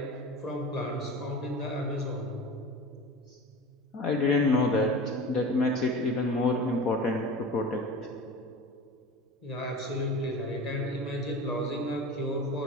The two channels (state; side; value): normal; both; correlation 0.34